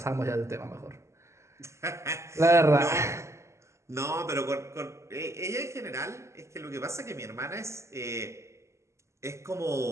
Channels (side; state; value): left; late; 0.13 ms